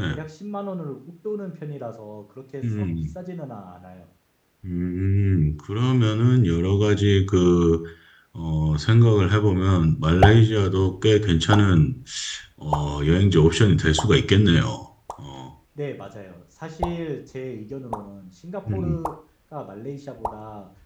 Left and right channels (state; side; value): identical; both; correlation 1.00